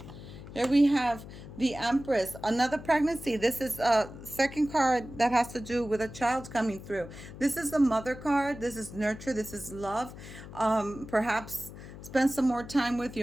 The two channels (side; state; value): left; noise; hum, 14 dB below the sound